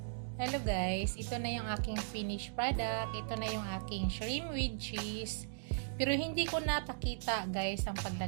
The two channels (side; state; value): left; silent; digital silence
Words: Hello, guys. Ito na yung aking finished product. Ito na yung aking shrimp with cheese. Pero hindi ko napakita, guys, ang